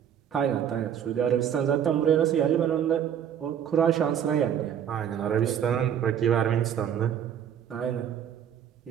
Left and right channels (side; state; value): left; quieter; 9.1 dB